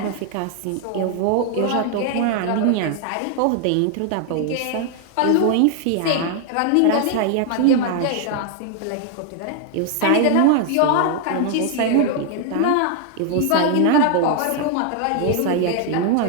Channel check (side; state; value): both; different; correlation 0.00